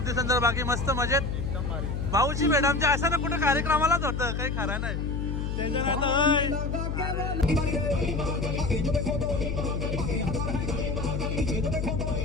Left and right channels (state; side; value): noise; left; hum, 2 dB below the sound